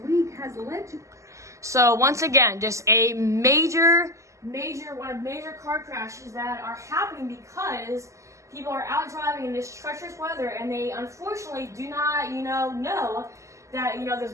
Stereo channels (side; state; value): left; late; 0.15 ms